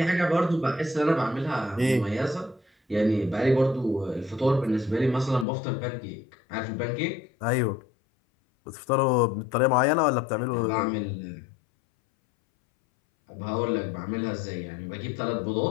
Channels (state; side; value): drops out; right; at 5.5 s